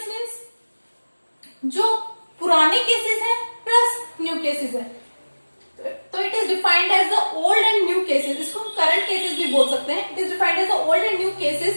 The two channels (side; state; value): both; inverted; correlation -1.00